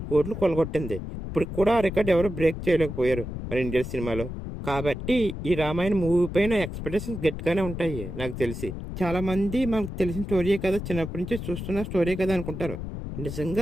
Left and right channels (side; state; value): left; noise; rumble, 7 dB below the sound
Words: కోట్లు కొలగొట్టింది. ఇప్పుడు కూడా ఆ రికార్డ్ ఎవరు బ్రేక్ చేయలేకపోయారు మన ఇండియన్ సినిమాలో. కాబట్టి ఈ రామాయణ మూవీ పైన ఎక్స్పెక్టేషన్స్ గట్టిగానే ఉంటాయి. నాకు తెలిసి చాలా మంది మనకు తెలిసిన స్టోరీయే కదా, చిన్నప్పటి నుంచి చూస్తున్న స్టోరీ కదా అనుకుంటారు.